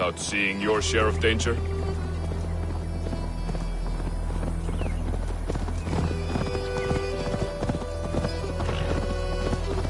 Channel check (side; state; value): both; identical; correlation 1.00